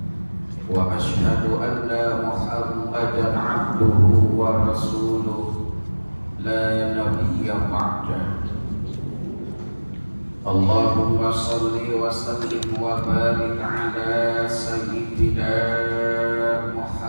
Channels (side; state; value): both; inverted; correlation -1.00